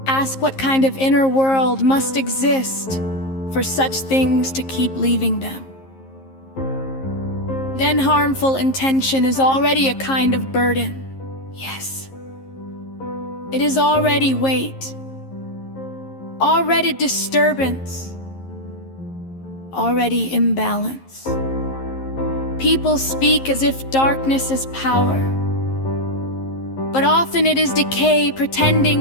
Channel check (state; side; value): late; right; 11 ms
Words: Ask what kind of inner world must exist for such things to keep leaving them. Then harmful intention is already a kind of burden. Yes. It is already weight, already disturbance, already imbalance. People speak as if darkness is power, but often it is decay